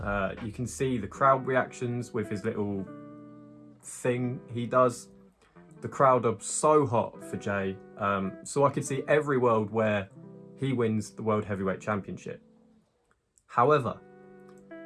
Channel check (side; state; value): both; identical; correlation 1.00